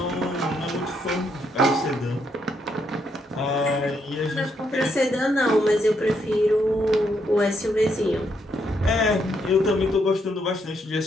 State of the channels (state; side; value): normal; both; correlation 0.76